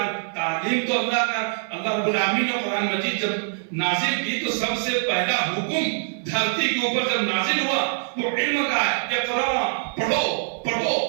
تعلیم تو اللہ رب العالمین نے قرآن مجید جب نازل کی تو سب سے پہلا حکم دھرتی کے اوپر جب نازل ہوا وہ علم کا ہے، اقرا، پڑھو پڑھو۔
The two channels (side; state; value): left; silent; 57 dB below the other